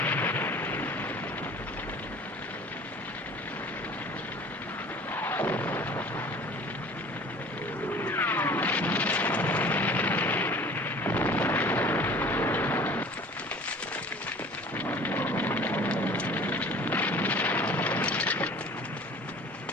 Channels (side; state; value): both; normal; correlation 0.46